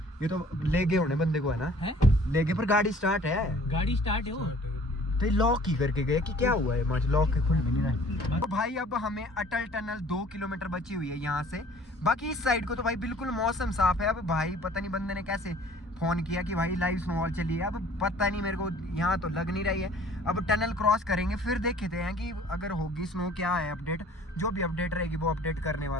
ये तो ले गए होने बंदे को है ना, ले गए पर गाड़ी स्टार्ट है, गाड़ी स्टार्ट है वो तो लॉक ही करके गए कि क्या हुआ है, मच लॉक के खुल में नहीं रहा। तो भाई अब हमें अटल टनल 2 किलोमीटर बची हुई है यहाँ से। बाकी इस साइड को तो भाई बिल्कुल मौसम साफ है। अब भाई पता नहीं बंदे ने कैसे फ़ोन किया कि भाई लाइव स्नोफॉल चली है, अब पता नहीं मेरे को, यहाँ तो लग नहीं रही है। अब टनल क्रॉस करेंगे फिर देखते हैं कि अगर होगी स्नो क्या है अपडेट, जो भी अपडेट रहेगी वो अपडेट करने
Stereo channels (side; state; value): both; normal; correlation 0.52